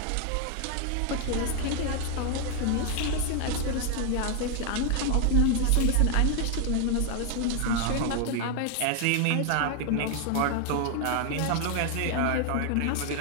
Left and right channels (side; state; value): both; different; correlation 0.00